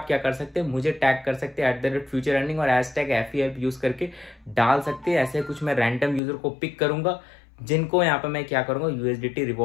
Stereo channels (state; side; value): drops out; right; at 6.2 s